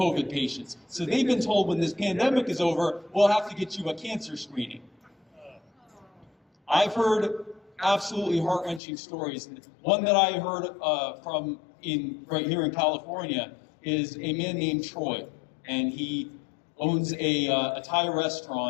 patients. So they've been told when this pandemic is over, we'll have to get you a cancer screening. I've heard absolutely heart-wrenching stories. One that I heard right here in California is a man named Troy, and he owns a Thai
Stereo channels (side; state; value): right; drops out; at 8.8 s